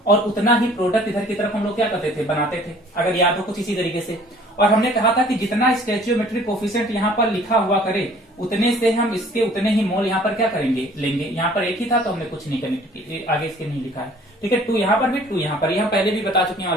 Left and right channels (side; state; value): both; normal; correlation 0.53